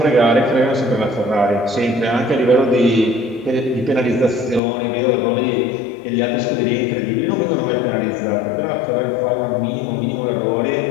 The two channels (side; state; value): right; drops out; at 4.6 s